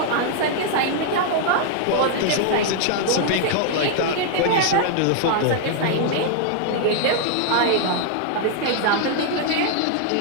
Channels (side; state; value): both; different; correlation -0.01